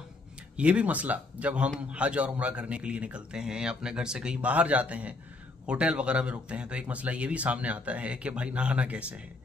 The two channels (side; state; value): right; quieter; 3.3 dB